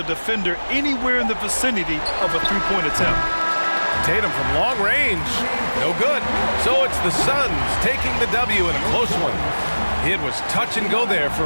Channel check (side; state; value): both; inverted; correlation -1.00